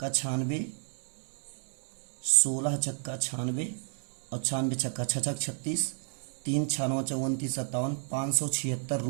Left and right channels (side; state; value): left; silent; 57 dB below the other